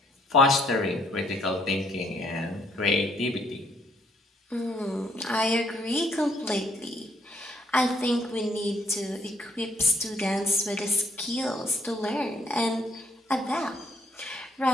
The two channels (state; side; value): normal; both; correlation 0.67